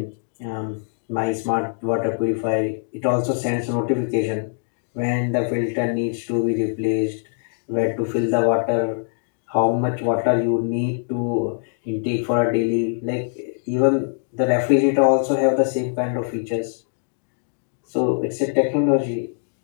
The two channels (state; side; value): silent; right; digital silence